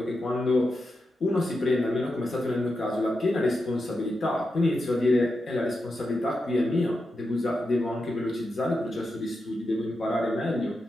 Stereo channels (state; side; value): normal; both; correlation 0.88